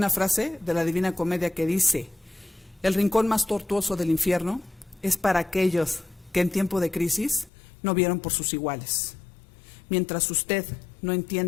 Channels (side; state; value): right; drops out; at 7.5 s